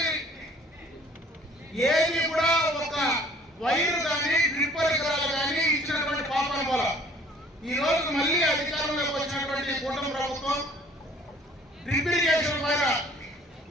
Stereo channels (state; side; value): normal; both; correlation 0.55